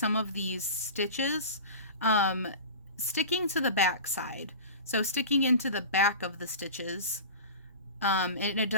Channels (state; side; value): inverted; both; correlation -0.33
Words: of these stitches, sticking to the back side. So sticking into the back of the stitches. And it